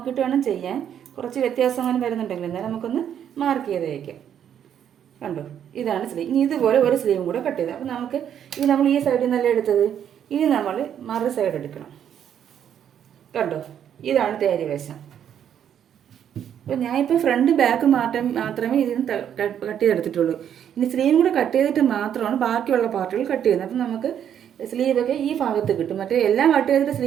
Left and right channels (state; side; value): quieter; left; 9.3 dB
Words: വേണം ചെയ്യാൻ. കുറച്ച് വ്യത്യാസം അങ്ങനെ വരുന്നുണ്ടെങ്കിൽ എന്നാൽ നമുക്കൊന്ന് മാർക്ക് ചെയ്ത് വയ്ക്കാം. കണ്ടോ, ഇതാണ് സ്ലീവ്. ഇനി ഇതുപോലെ ഒരു സ്ലീവും കൂടെ കട്ട് ചെയ്ത്. അപ്പോൾ നമുക്ക് ഇത് നമ്മൾ ഈ സൈഡിൽ നിന്നല്ല എടുത്തത്, ഇനി നമ്മൾ മറു സൈഡ് എടുക്കണം. കണ്ടോ, ഇതാണ് തേരി വശം. അപ്പോൾ ഞാനിപ്പോൾ ഫ്രണ്ട് ബാക്ക് മാത്രമേ ഇതിന് കട്ട് ചെയ്തെടുത്തിട്ടുള്ളൂ. ഇനി സ്ലീവും കൂടെ കട്ട് ചെയ്തിട്ട് മാത്രമാണ് ബാക്കിയുള്ള പാർട്ടുകൾ കട്ട് ചെയ്യുന്നത്. അപ്പം നമുക്ക് സ്ലീവൊക്കെ ഈ ഭാഗത്ത് കിട്ടും. മറ്റേ എല്ലാം കട്ട് ചെയ്തിട്ട്